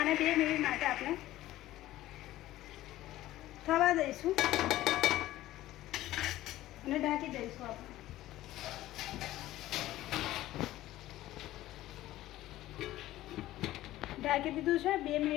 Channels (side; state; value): right; quieter; 15.3 dB